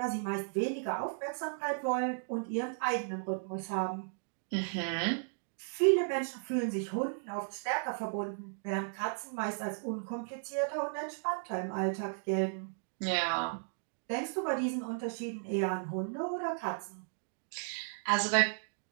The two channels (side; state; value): left; silent; digital silence